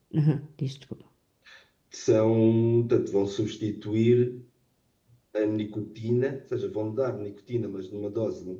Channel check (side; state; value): both; identical; correlation 1.00